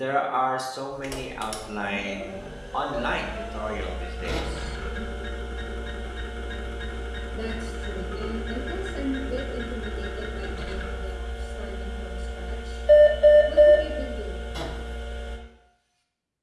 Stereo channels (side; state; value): both; identical; correlation 1.00